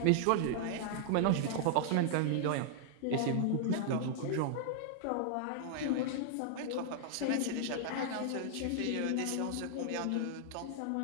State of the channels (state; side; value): different; both; correlation -0.01